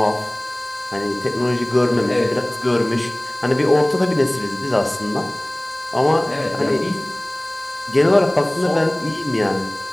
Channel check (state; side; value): noise; right; hiss, 29 dB below the sound